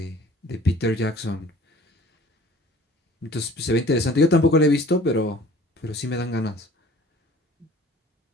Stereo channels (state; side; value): normal; both; correlation 0.50